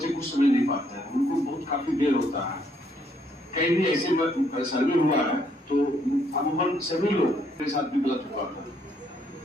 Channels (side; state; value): both; normal; correlation 0.70